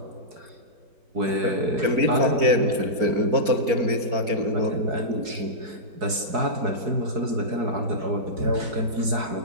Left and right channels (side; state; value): left; late; 4.7 ms